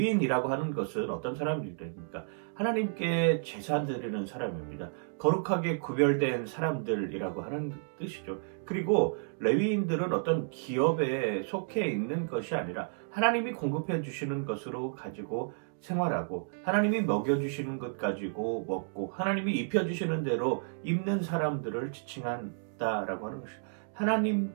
하는 것은 어떤 사람입니까? 하나님께 제사 드리는 사람입니다. 거룩하게 구별된 사람들이라고 하는 뜻이죠. 그리고 레위인들은 어떤 기업에 속해 있는 것이 아니라 하나님이 공급해 주시는 것으로 가지고 생활하고 하나님이 먹여주시는 것 가지고 먹고 하나님이 입혀주시는 대로 입는 사람들을 지칭한다라고 하는 것이죠.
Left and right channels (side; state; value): left; silent; digital silence